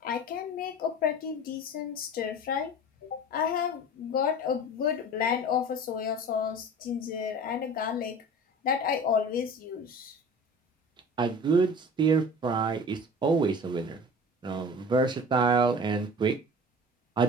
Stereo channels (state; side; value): normal; both; correlation 0.39